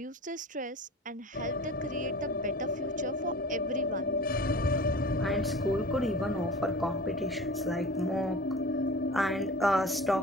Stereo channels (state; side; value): normal; both; correlation 0.38